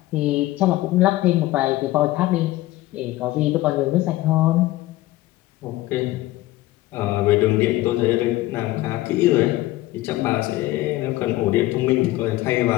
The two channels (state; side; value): quieter; right; 17.2 dB